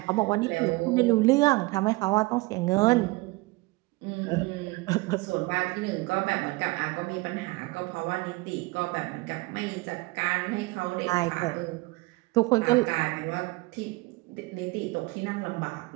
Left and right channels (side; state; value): left; quieter; 22.7 dB